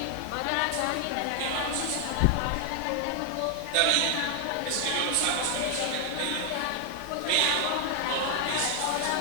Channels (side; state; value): both; different; correlation 0.00